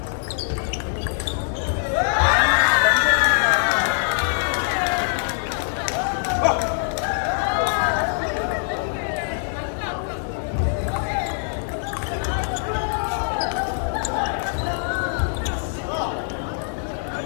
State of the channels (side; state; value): right; silent; digital silence